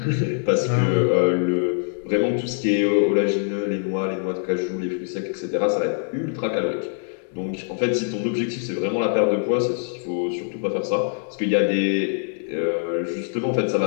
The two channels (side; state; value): right; silent; digital silence